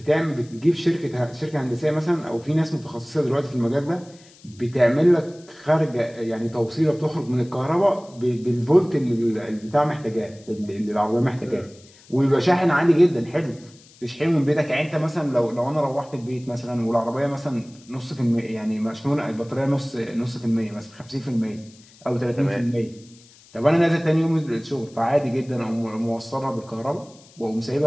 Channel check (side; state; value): left; noise; hiss, 26 dB below the sound